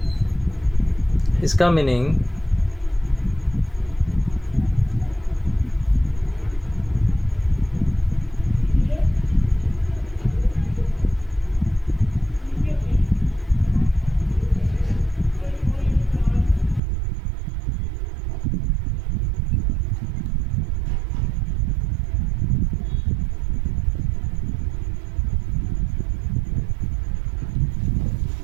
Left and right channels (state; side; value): drops out; left; at 16.8 s